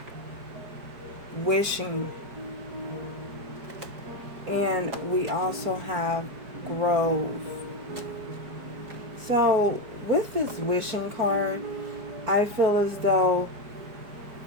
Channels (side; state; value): left; late; 4.9 ms